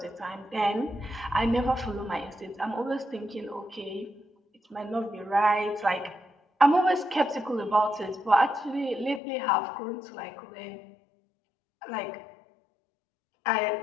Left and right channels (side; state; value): right; drops out; at 9.2 s